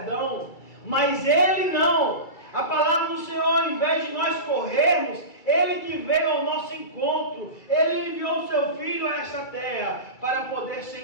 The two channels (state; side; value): late; right; 2.3 ms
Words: mas Ele não. A palavra do Senhor, ao invés de nós corrermos, Ele que veio ao nosso encontro, Ele enviou o seu Filho a esta terra, para poder